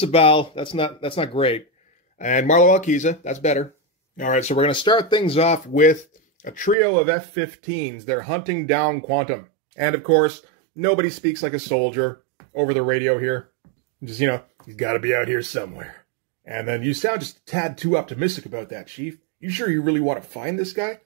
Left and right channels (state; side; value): drops out; left; at 6.8 s